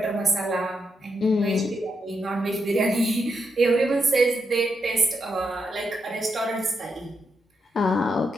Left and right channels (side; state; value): both; normal; correlation 0.82